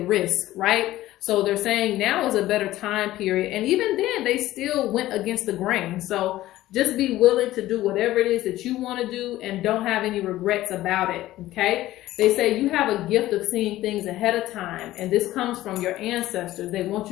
risk, right? So they're saying now is a better time period. And even then, they still went against the grain. So just be willing to do whatever it is that you want to do and don't have any regrets about it, okay? They say you have a gift of seeing things ahead of time, and this comes from your ancestors. They want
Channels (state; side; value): quieter; right; 15.5 dB